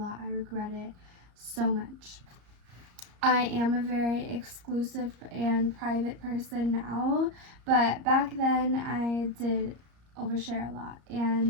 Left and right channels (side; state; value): left; late; 34 ms